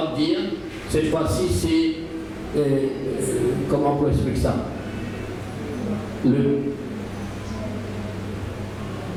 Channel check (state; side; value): identical; both; correlation 1.00